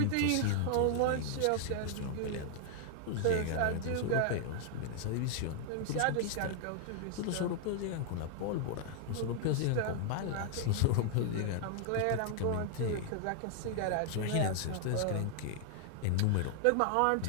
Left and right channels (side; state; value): both; different; correlation 0.00